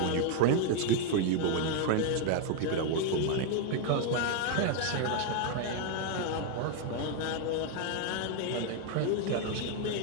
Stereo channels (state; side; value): different; both; correlation 0.01